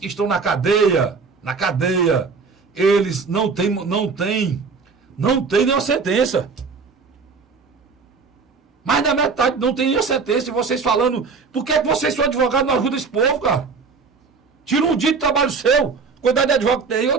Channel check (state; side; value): quieter; left; 5.0 dB